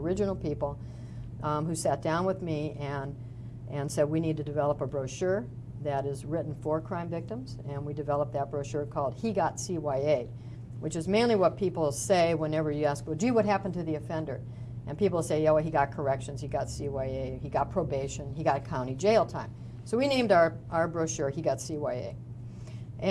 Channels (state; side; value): identical; both; correlation 1.00